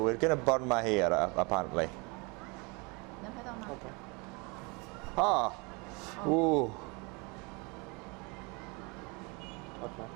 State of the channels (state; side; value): quieter; left; 29.0 dB